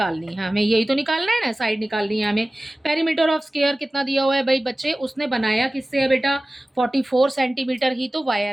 है, हमें यही तो निकालना है ना, साइड निकालनी है हमें। पेरीमीटर ऑफ स्क्वायर कितना दिया हुआ है भाई बच्चे? उसने बनाया किससे है बेटा? 44 सेंटीमीटर ही तो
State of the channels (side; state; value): both; normal; correlation 0.97